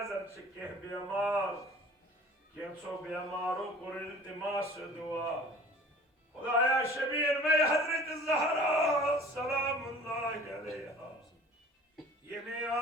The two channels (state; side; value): normal; both; correlation 0.47